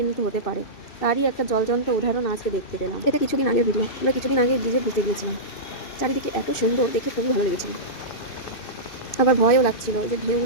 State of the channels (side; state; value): right; late; 2.6 ms